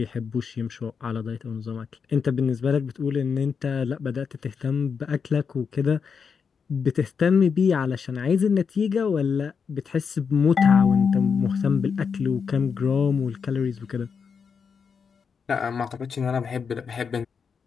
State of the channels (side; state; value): right; quieter; 6.1 dB